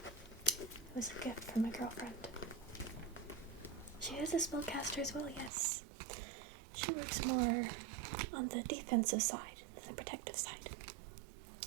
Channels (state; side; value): drops out; left; at 5.5 s